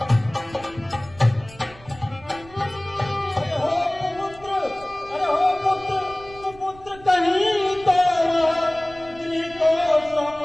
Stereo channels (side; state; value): right; noise; rumble, 21 dB below the sound